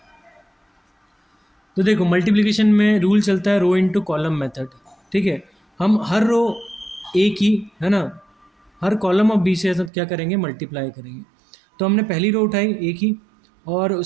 तो देखो मल्टीप्लिकेशन में रूल चलता है रो इंटू कॉलम मेथड। ठीक है, हम हर रो ए की, है ना, हर कॉलम ऑफ बी से क्या करेंगे, मल्टीप्लाई करेंगे। तो हमने पहली रो उठाई ए की और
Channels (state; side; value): drops out; left; at 9.9 s